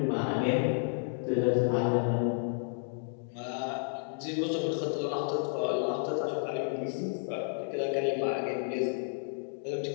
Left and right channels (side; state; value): right; silent; digital silence